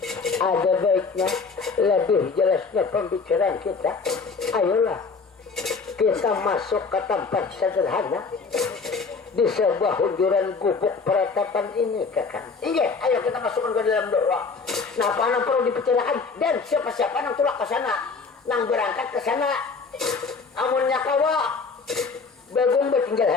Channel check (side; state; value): right; quieter; 4.7 dB